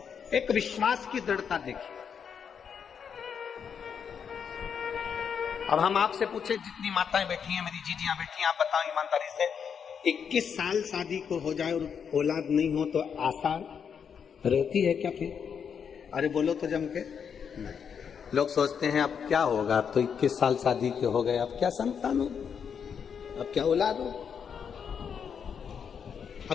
एक विश्वास की दृढ़ता देखिए। अब हम आपसे पूछे, जितनी माताएं बैठी हैं, मेरी जीजियां बैठी हैं, आप बताओ ईमानदारी से, 21 साल शादी को हो जाए और औलाद नहीं हो तो आशा रहती है क्या फिर? अरे बोलो तो जम के। नहीं, लोग सोचते हैं अब क्या होगा, अब तो 21 साल शादी के हो गए, अब क्या संतान हो, अब क्या औलाद हो,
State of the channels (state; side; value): quieter; right; 7.1 dB